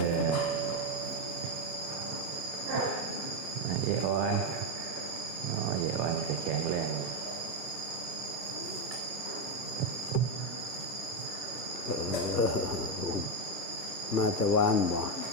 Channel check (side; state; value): both; normal; correlation 0.06